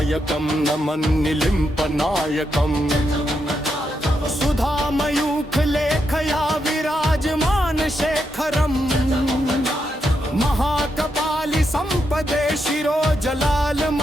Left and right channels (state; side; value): normal; both; correlation 0.83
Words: नमन निलिम्प नायकम सुधा मयूख लेख शिखया विराजमान शेखरम् महाकपालि संपदे शिरो